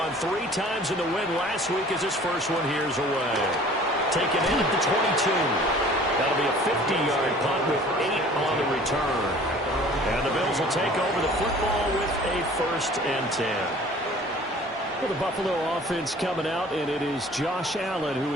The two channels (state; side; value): normal; both; correlation 0.49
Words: 3 times in the win last week as his first one here's away. Taken in at the 22. That'll be a 50-yard punt with 8 on the return. And the Bills will take over the football with a 1st and 10. Well, the Buffalo offense coming out, and it is Josh Allen who